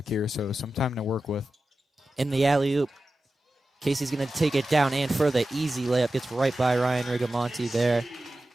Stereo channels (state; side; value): normal; both; correlation 0.94